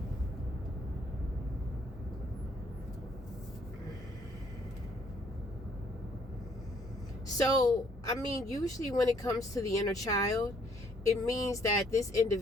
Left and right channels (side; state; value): both; normal; correlation 0.65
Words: So, I mean, usually when it comes to the inner child, it means that this